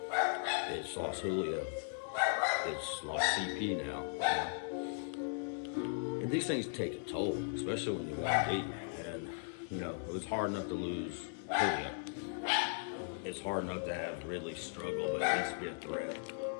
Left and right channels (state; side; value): silent; right; digital silence